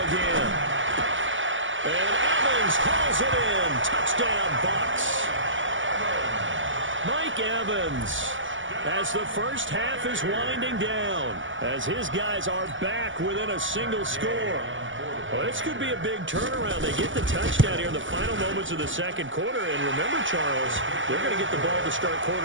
And Evans hauls it in. Touchdown, Bucks. Mike Evans, as the first half is winding down, as his guys are back within a single score. Well, this could be a big turnaround. They get the touchdown here in the final moments of the 2nd quarter. And remember, Charles, they're going to get the ball to start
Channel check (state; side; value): late; left; 0.56 ms